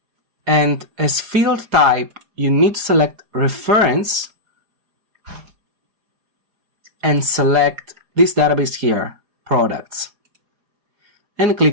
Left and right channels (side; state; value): left; late; 4.9 ms